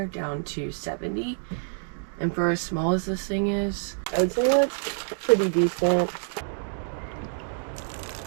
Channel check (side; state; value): left; silent; digital silence